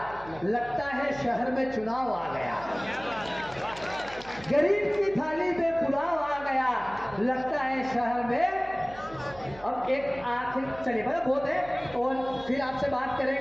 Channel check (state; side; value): noise; right; hum, 19 dB below the sound